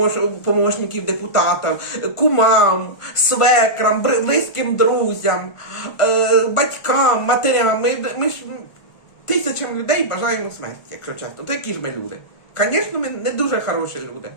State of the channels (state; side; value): late; right; 1.4 ms